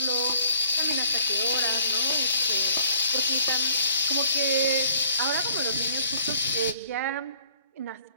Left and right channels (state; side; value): inverted; both; correlation -0.60